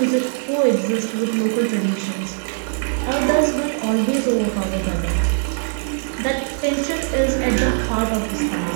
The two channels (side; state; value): left; silent; 65 dB below the other